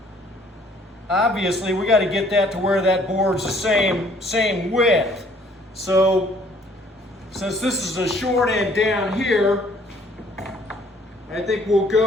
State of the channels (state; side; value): normal; both; correlation 0.60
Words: obviously we got to get that to where that board's the same width. So since this is a short end down here, I think we'll